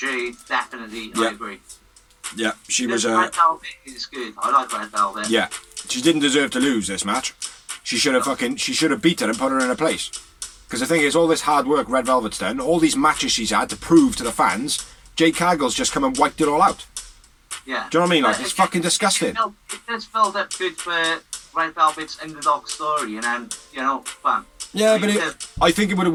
definitely, Yeah. I agree. Yeah, she was. Red Velvet is good. I like Red Velvet. Yeah, she didn't deserve to lose this match. She should have beat her and put her in her place. Because the thing is, all this hard work Red Velvet's done, all these matches she's had to prove to the fans, Jade Cargill's just come and wiped it all out. Yeah. Do you know what I mean? Like, But it's again, fucking disgusting. You know, it does build up good for Red Velvet's underdog story, and then, you know, bam. Yeah, but I think it would have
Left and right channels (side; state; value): both; identical; correlation 1.00